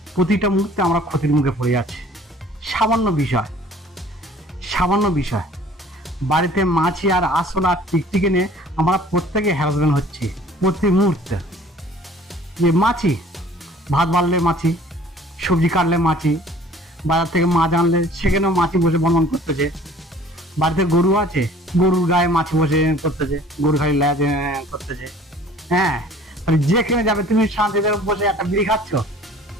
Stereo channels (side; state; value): both; normal; correlation 0.51